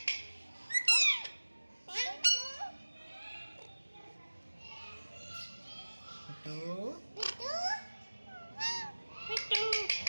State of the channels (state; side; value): inverted; both; correlation -1.00